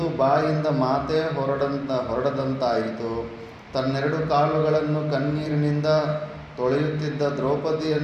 ಬಾಯಿಂದ ಮಾತೇ ಹೊರಡದಂತಾಯಿತು. ತನ್ನೆರಡು ಕಾಲುಗಳನ್ನು ಕಣ್ಣೀರಿನಿಂದ ತೊಳೆಯುತ್ತಿದ್ದ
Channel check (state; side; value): identical; both; correlation 1.00